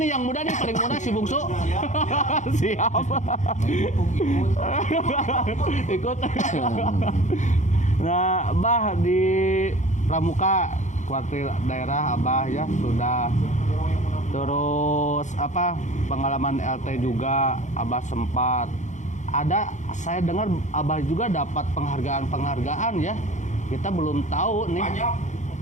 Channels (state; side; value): late; right; 0.35 ms